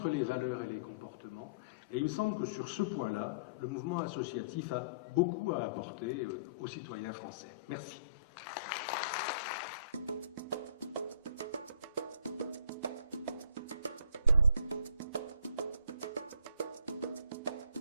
les valeurs et les comportements. Et il me semble que sur ce point-là, le mouvement associatif a beaucoup à apporter aux citoyens français. Merci.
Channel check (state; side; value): inverted; both; correlation -0.52